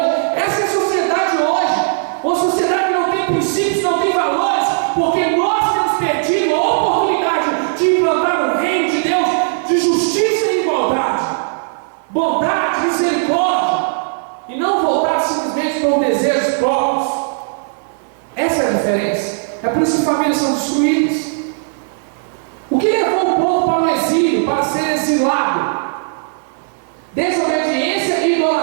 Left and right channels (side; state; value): left; silent; 60 dB below the other